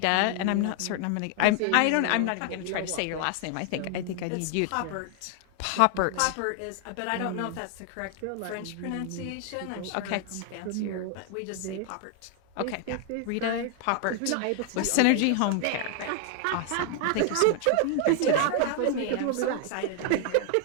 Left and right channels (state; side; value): different; both; correlation 0.00